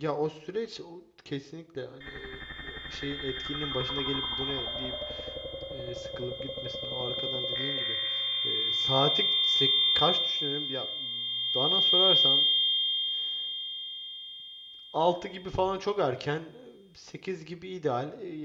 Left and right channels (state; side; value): identical; both; correlation 1.00